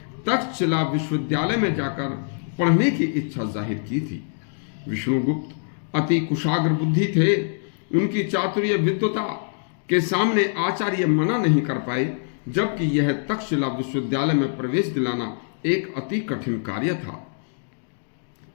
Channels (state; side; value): silent; right; digital silence